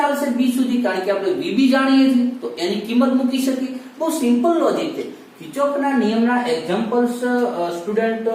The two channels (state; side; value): identical; both; correlation 1.00